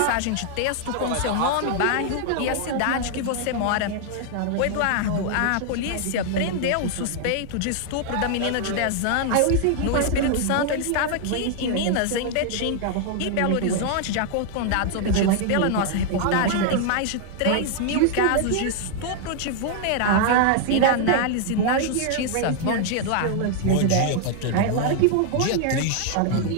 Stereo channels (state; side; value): different; both; correlation 0.00